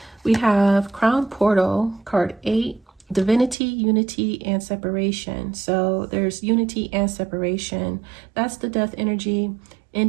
We have Crown Portal, card 8, Divinity, Unity, and Separation. So there's unity and separation. That's the death energy,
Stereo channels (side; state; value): left; drops out; at 3.6 s